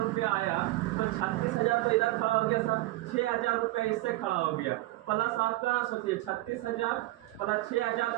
रुपया आया तो 36,000 तो इधर खड़ा हो गया सर, 6,000 रुपये इससे खड़ा हो गया, प्लस आपका सोचिए 36,000 प्लस 6,000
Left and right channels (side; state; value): left; quieter; 18.5 dB